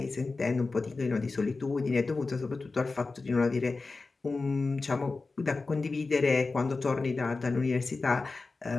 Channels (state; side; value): quieter; right; 3.8 dB